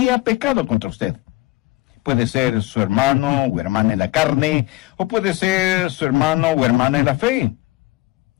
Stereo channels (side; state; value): right; quieter; 19.6 dB